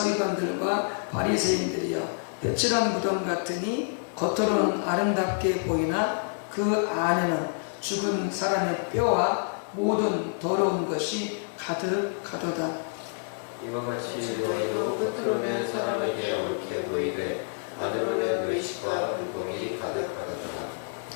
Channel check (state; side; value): silent; right; digital silence